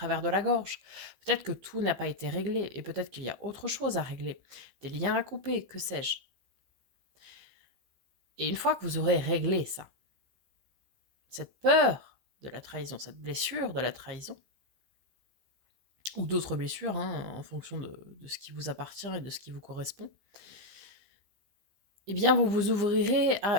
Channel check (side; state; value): left; late; 15 ms